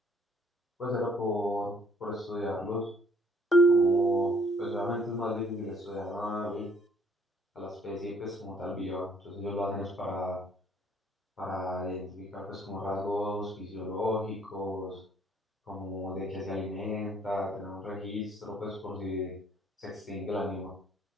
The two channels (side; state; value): both; normal; correlation 0.61